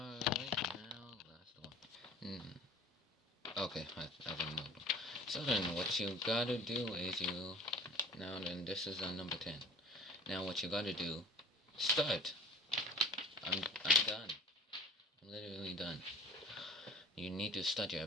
now last one. Okay, I didn't know. So then what you gotta do is now then this is number 10. Now what you gotta do, start. I'm done. I'm literally done. You need to start your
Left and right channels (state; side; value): normal; both; correlation 0.43